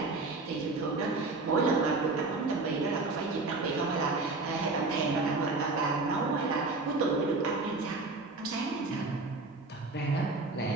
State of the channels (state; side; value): quieter; left; 3.5 dB